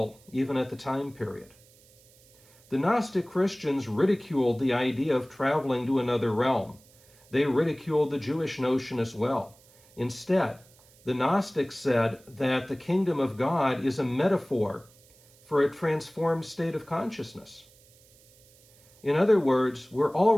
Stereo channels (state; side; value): noise; right; hiss, 28 dB below the sound